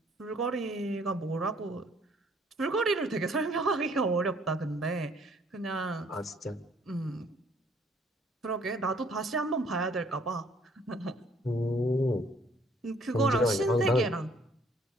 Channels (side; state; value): both; normal; correlation 0.61